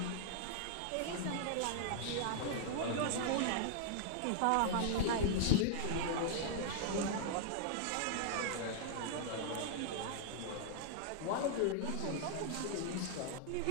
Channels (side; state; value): both; different; correlation -0.01